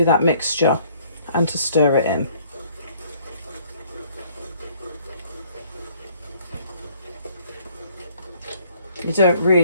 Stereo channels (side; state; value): both; inverted; correlation -0.61